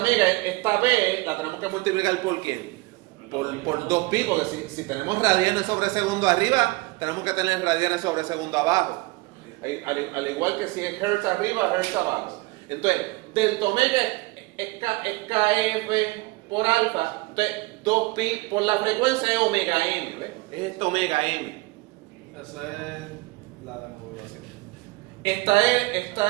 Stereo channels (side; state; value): left; quieter; 22.5 dB